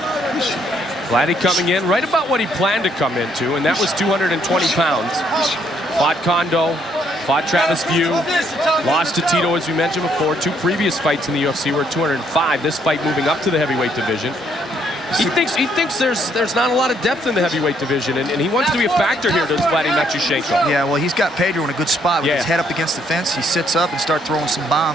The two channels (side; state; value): both; normal; correlation 0.69